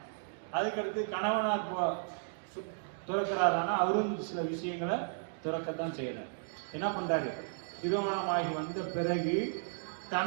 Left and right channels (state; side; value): silent; left; digital silence